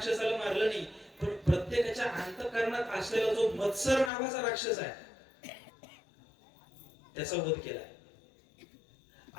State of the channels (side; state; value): right; drops out; at 4.1 s